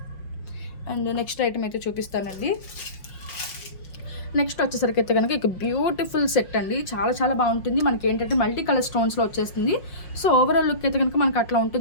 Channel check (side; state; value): right; late; 5.6 ms